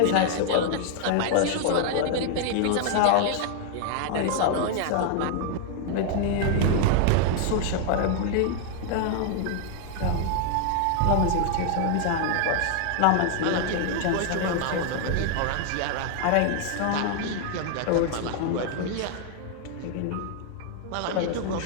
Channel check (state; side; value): different; both; correlation 0.00